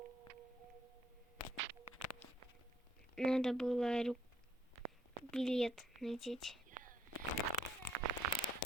Надо было билет надеть.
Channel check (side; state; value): both; normal; correlation 0.68